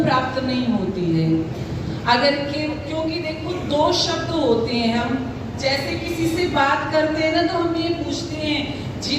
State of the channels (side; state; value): both; identical; correlation 1.00